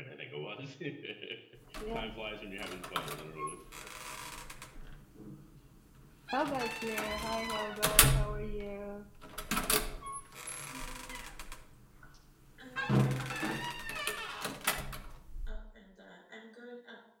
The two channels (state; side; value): identical; both; correlation 1.00